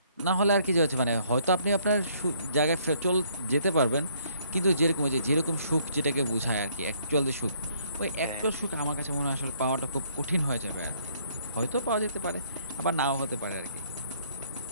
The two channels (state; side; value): inverted; both; correlation -0.65